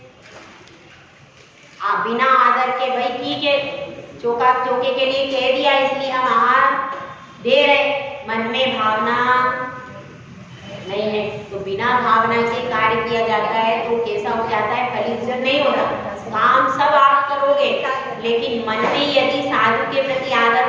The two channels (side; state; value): both; identical; correlation 1.00